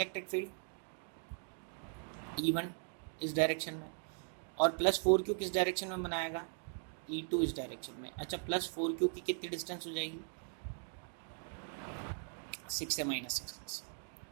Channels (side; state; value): left; silent; 52 dB below the other